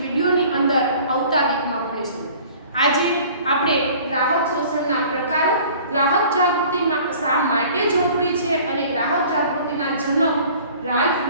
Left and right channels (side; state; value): both; inverted; correlation -0.49